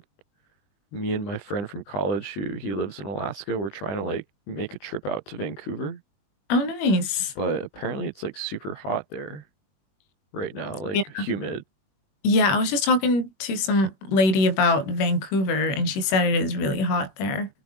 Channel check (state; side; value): late; right; 21 ms